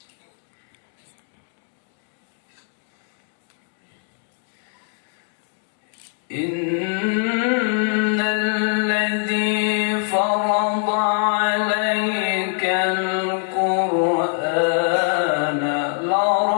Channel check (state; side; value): silent; right; 64 dB below the other